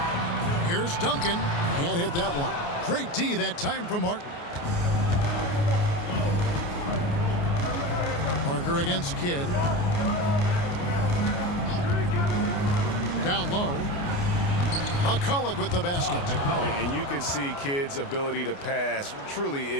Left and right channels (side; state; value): right; late; 29 ms